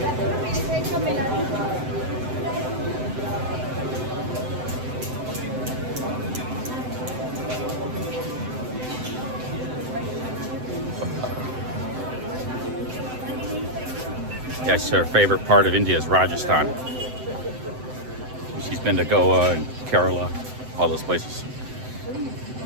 Yes, her favorite part of India is Rajasthan. She's been to Goa and Kerala, all those places.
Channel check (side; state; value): left; late; 7.8 ms